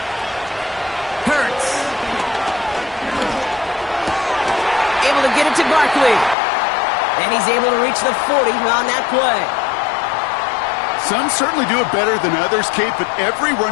Hurts. Able to get it to Barkley. And he's able to reach the 40 on that play. Some certainly do it better than others, Kate, but every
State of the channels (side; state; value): right; drops out; at 6.4 s